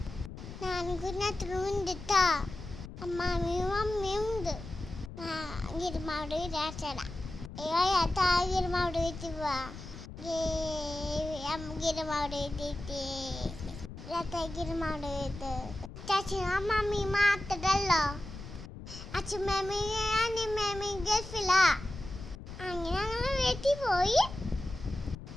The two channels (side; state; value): left; noise; rumble, 12 dB below the sound